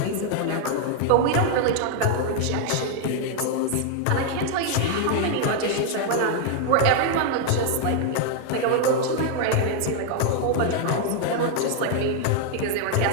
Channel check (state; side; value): different; both; correlation 0.00